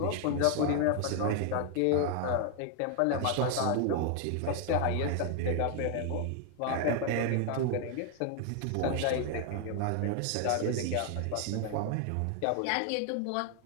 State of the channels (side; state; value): both; different; correlation 0.00